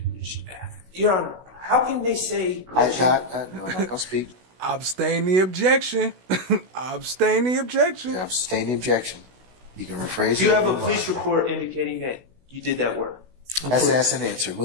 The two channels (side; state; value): left; late; 16 ms